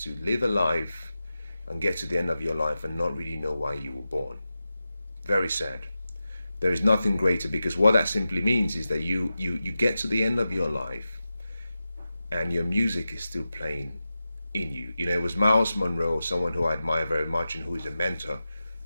to live a life and get to the end of your life and not really know why you were born. Very sad. There is nothing greater, because what that simply means is that you get to the end of your life and your music is still playing in you. You know, it was Miles Monroe, someone who I admire very much and who is a mentor,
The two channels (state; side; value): inverted; both; correlation -0.93